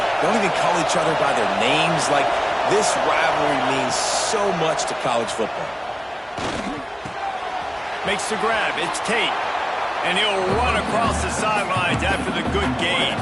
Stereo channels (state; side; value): identical; both; correlation 1.00